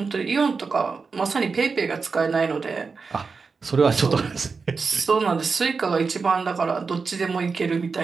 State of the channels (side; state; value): left; quieter; 4.8 dB